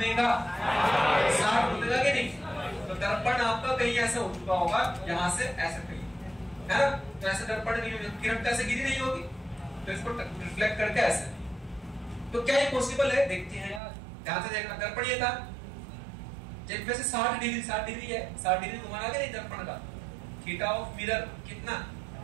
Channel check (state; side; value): drops out; left; at 13.8 s